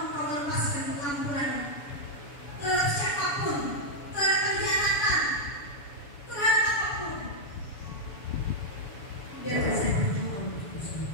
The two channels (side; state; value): right; late; 7.0 ms